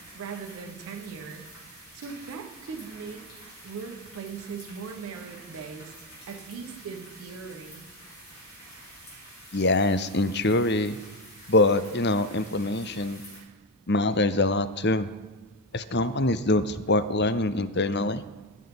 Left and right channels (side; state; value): both; normal; correlation 0.13